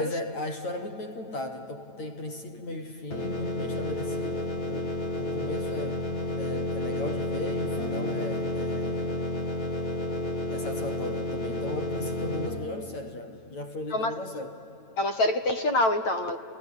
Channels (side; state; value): right; late; 9.0 ms